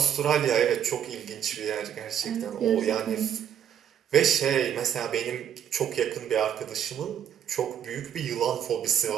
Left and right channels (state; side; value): quieter; left; 9.3 dB